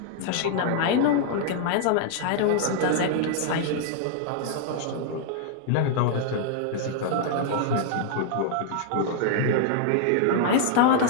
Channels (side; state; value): both; different; correlation -0.01